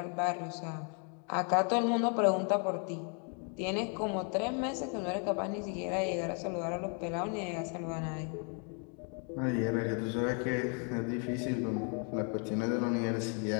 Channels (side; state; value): right; quieter; 39.7 dB